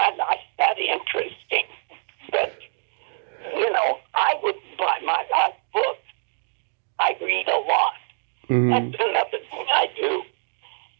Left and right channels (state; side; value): silent; left; 62 dB below the other